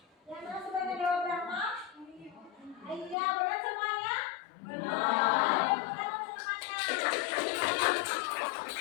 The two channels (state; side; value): drops out; right; at 3.2 s